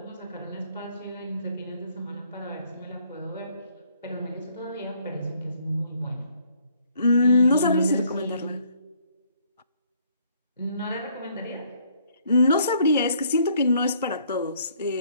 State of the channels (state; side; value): inverted; both; correlation -0.64